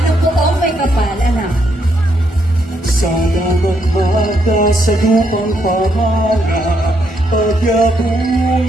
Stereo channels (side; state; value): both; normal; correlation 0.75